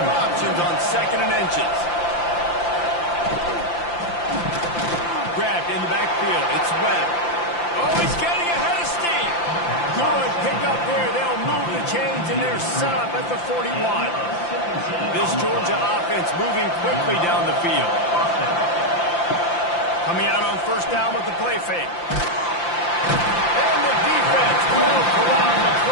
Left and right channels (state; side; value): late; right; 5.8 ms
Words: options on second and inches. Grabbed in the backfield. It's Webb. Oh, he's getting ahead of steam. Good pick up there. They'll move the chains, and they're set up at the 41. This Georgia offense moving quickly down the field. Coming out on first down with the play fake. And the defense will corral the